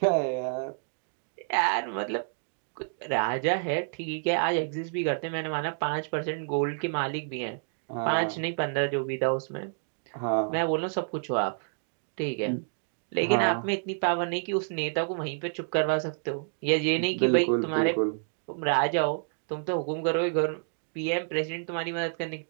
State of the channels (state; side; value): silent; left; digital silence